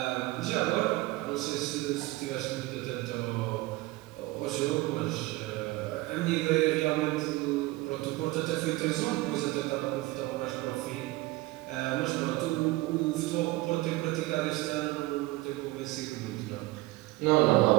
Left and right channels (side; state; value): left; quieter; 19.8 dB